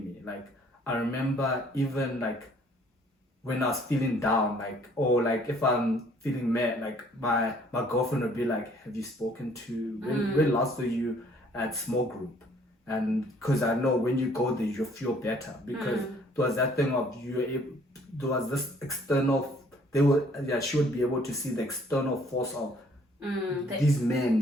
me. Like, I remember even like when I was feeling down, like, or like if I'm feeling mad, like my girlfriend would be like, have you spoken to, when last were you at small group? And because I know when you go there, you feel better, because there was that thing of there was this external, she would be able to see the external force of these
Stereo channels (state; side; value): normal; both; correlation 0.60